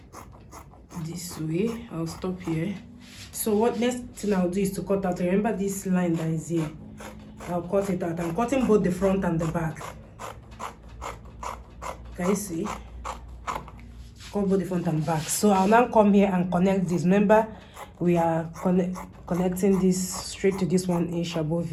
This way, I'll stop here. So what next thing I'll do is to cut out. Remember this line that is here. I'll cut it out. I'm cutting both the front and the back. Can you see? Cut both the front and back. So I'll now come here and connect this. Remember, we are connecting this straight to this 1 inch above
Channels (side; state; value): both; identical; correlation 1.00